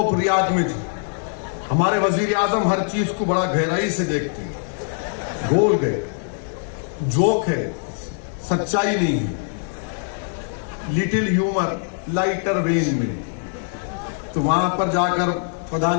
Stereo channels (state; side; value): silent; right; 64 dB below the other